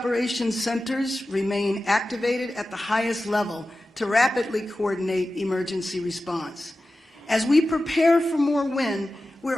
centers remain activated at the highest level to rapidly coordinate emergency response. As we prepare for more wind,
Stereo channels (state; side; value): normal; both; correlation 0.94